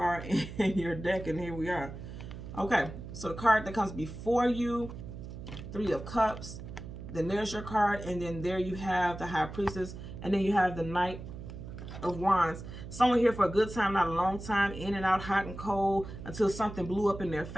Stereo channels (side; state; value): right; noise; hum, 11 dB below the sound